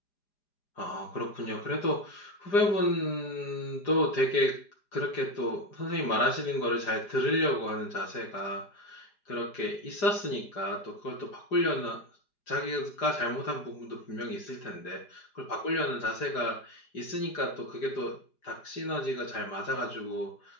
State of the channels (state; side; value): late; right; 4.9 ms